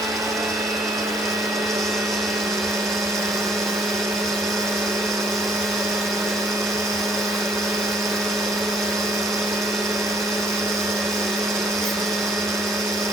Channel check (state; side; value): normal; both; correlation 0.64